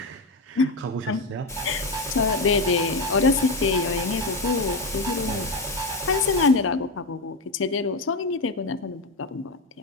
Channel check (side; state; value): right; quieter; 3.0 dB